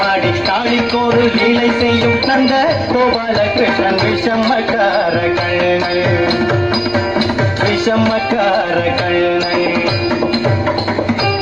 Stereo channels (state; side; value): noise; right; rumble, 22 dB below the sound